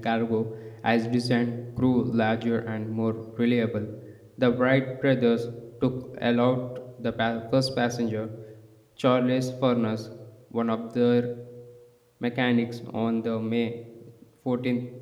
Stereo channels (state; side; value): identical; both; correlation 1.00